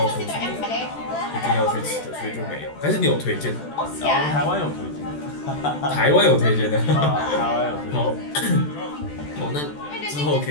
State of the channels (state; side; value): late; right; 14 ms